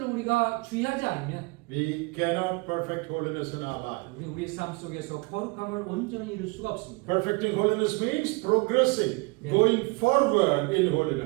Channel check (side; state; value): left; quieter; 27.7 dB